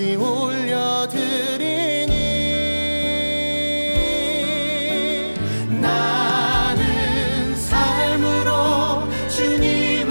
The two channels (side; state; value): both; inverted; correlation -1.00